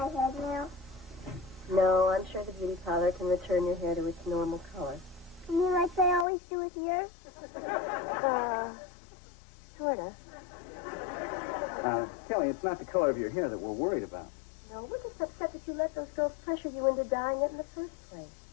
head now? No, I'm sure the beauty parlor can return your hair to its normal color. You mean like they always do with yours? Sort of. Kelly, it's not the color of your hair that we're worried about. No, we're just upset that you let those girls pressure you into dyeing it in the first place.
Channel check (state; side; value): drops out; right; at 6.2 s